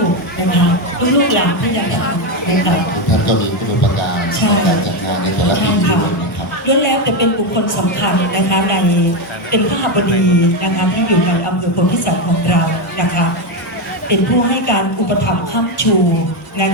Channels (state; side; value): normal; both; correlation 0.09